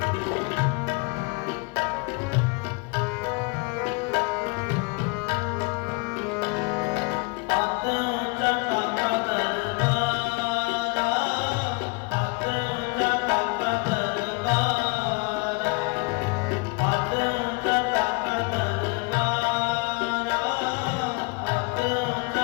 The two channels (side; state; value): right; quieter; 29.1 dB